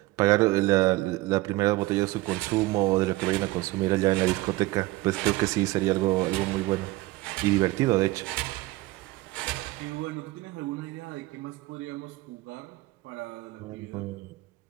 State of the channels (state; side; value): quieter; left; 19.7 dB